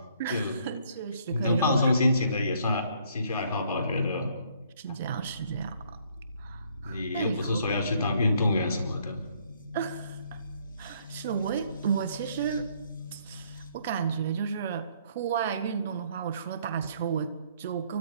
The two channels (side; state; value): both; inverted; correlation -0.65